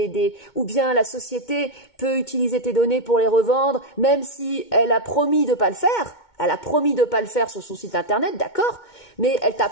ou bien la société peut utiliser tes données pour les revendre, même si elle a promis de pas le faire. Elle a promis de pas le faire sur son site internet, d'accord, mais elle t'a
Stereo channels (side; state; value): right; late; 2.2 ms